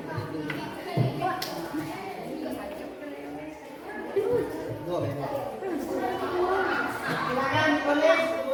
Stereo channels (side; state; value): both; identical; correlation 1.00